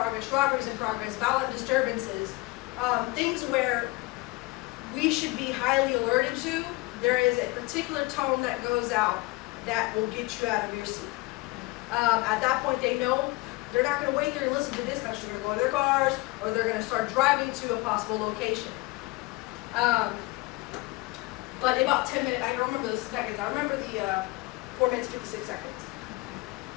robberies in progress, violent disturbances, things where we should be highly alerted to, there is a particular tone that goes out that will get you out of your seat. At that point, they know they're not going to wait there and listen to dispatch. They're going to go in their cars, or they're going to start driving to a possible location. But in about 10 minutes, I don't remember the seconds. I remember the 4 minutes, 56 seconds.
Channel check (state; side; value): quieter; right; 22.6 dB